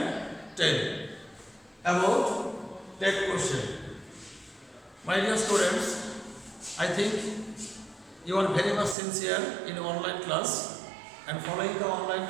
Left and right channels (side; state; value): left; drops out; at 9.0 s